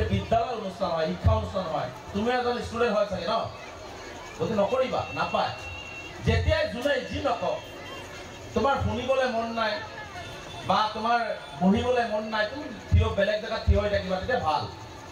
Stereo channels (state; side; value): identical; both; correlation 1.00